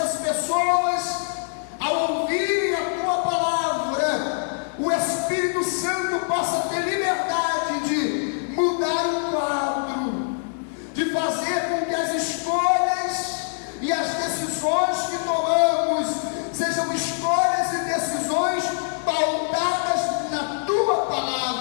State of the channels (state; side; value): silent; right; digital silence